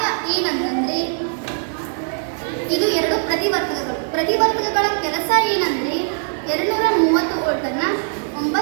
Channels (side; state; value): left; silent; 61 dB below the other